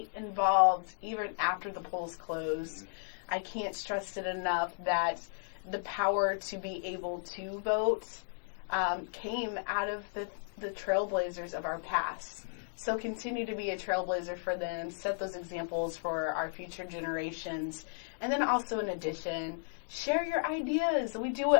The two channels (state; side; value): silent; right; digital silence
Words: involved even after the polls close. I can't stress it enough that the power to be able to vote came out of the trailblazers of our past. So continue to be a trailblazer for them. Set those examples for our future generations. And then also, in addition, share your ideas. We do